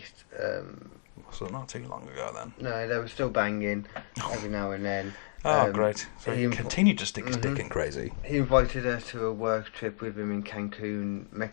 So not too long ago, then. No, they were still banging every now and then. Oh, great. So he continued to stick his dick in crazy. He invited her to a work trip with him in Cancun,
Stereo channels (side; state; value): right; silent; 57 dB below the other